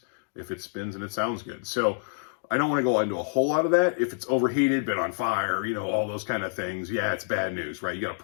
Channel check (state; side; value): silent; right; digital silence